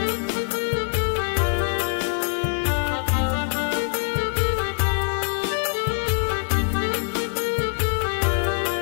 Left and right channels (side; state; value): right; silent; digital silence